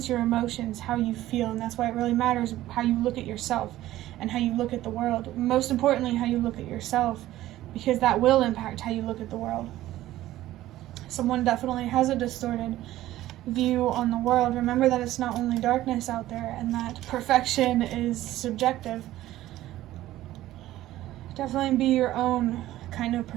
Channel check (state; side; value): quieter; left; 14.9 dB